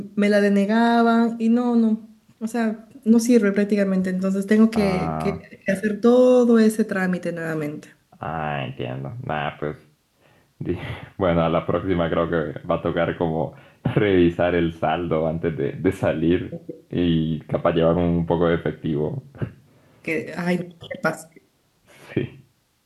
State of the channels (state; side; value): identical; both; correlation 1.00